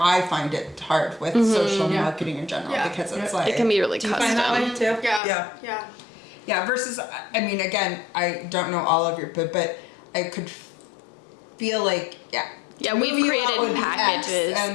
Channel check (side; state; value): right; drops out; at 5.2 s